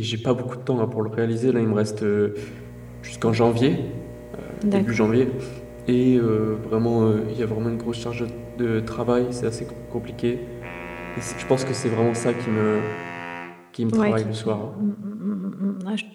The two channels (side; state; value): both; identical; correlation 1.00